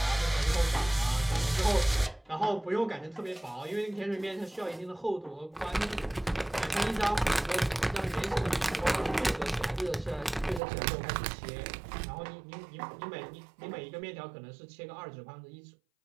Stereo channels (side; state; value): left; drops out; at 10.6 s